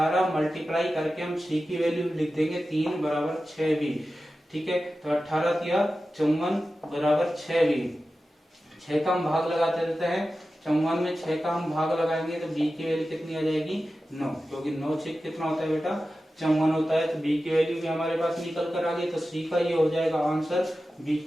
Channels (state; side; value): normal; both; correlation 0.94